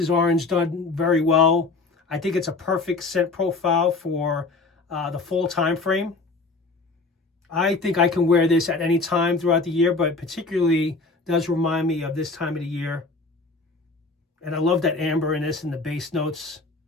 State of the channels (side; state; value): right; quieter; 3.6 dB